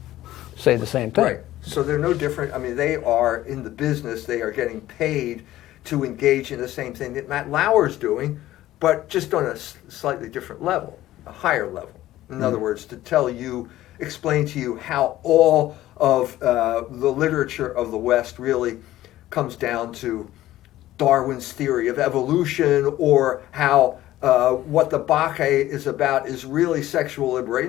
say the same thing. Right. So they're no different. I mean, they are in the business. They are getting paid to engage in the same thing that Matt Lauer's doing, but just on a slightly different level, a higher level. In other words, to explain to you how all of the literature of the West really comes down to Darwin's theory of evolution, or how what the Bacchae is about is really sexual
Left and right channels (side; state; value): right; quieter; 14.8 dB